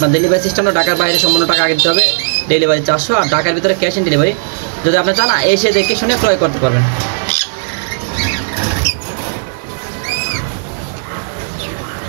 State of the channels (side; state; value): left; silent; digital silence